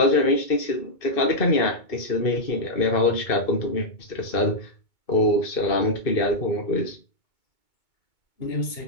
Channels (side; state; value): right; late; 2.2 ms